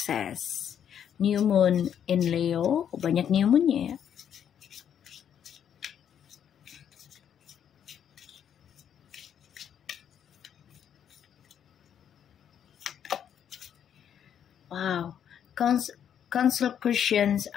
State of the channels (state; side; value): quieter; right; 9.0 dB